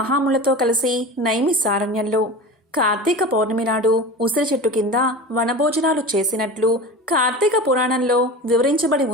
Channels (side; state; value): both; normal; correlation 0.32